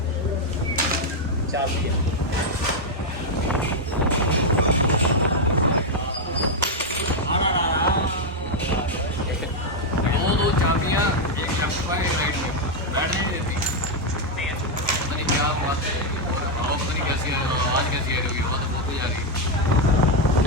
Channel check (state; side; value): normal; both; correlation 0.01